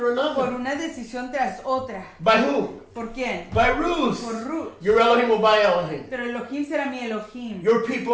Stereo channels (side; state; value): both; identical; correlation 1.00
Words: por another. una decisión tras otra. By whom? ¿Por quién? By Ruth. Por Ruth. Your Elohim will by Elohim. Pero Elohim será mi Elohim. Your